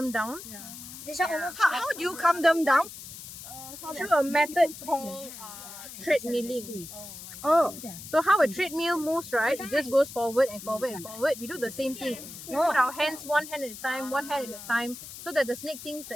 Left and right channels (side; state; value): left; noise; hiss, 13 dB below the sound